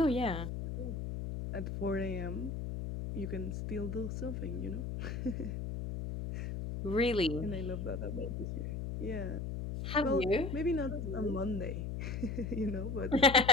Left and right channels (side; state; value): left; noise; hum, 4 dB below the sound